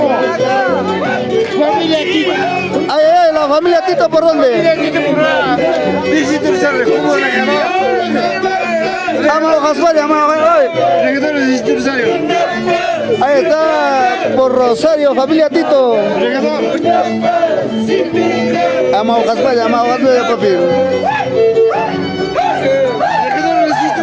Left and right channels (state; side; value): identical; both; correlation 1.00